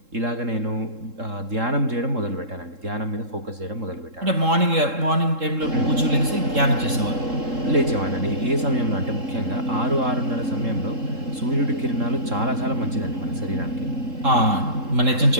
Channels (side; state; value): left; late; 3.7 ms